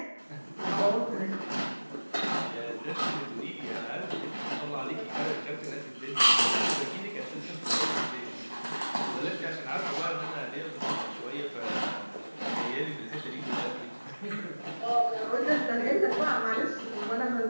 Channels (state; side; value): inverted; both; correlation -1.00